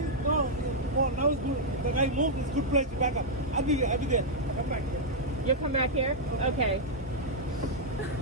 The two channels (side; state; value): both; normal; correlation -0.05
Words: now it's good. The guy moved, it's a good place to back up. I'll be there. Come back here. You'll come back here? Okay.